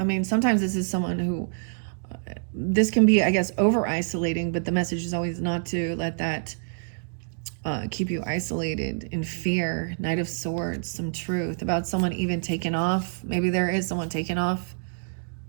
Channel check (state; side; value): silent; left; digital silence